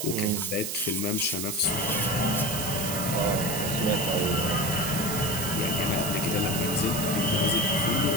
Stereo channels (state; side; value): noise; right; hiss, 3 dB below the sound